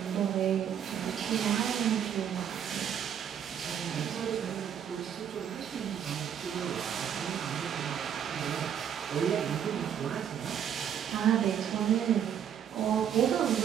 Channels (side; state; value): left; quieter; 8.9 dB